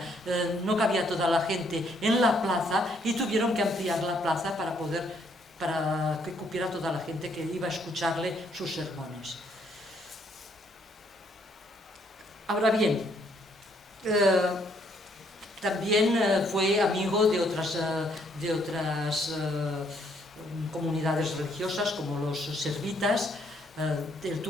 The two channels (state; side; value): normal; both; correlation 0.69